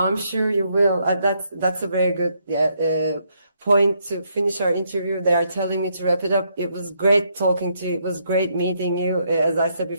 you will. That's a very good point to finish our interview. They are telling me to wrap it up. It was great talking to you. It was great meeting you. As I said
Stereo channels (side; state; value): both; inverted; correlation -0.74